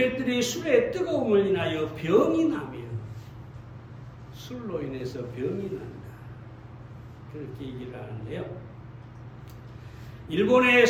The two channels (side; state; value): both; identical; correlation 1.00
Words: 술의 뜨거움을 인하여 병이 나며 술로 인해서 병이 난다. 그렇게 얘기를 하는데요. 일본의